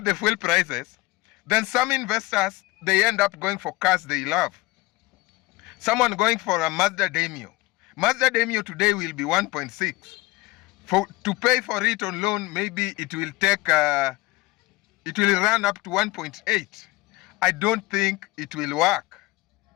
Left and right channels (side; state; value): right; quieter; 21.3 dB